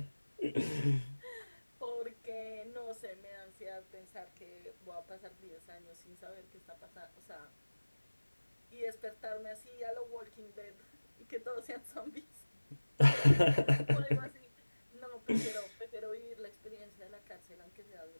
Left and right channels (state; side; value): inverted; both; correlation -1.00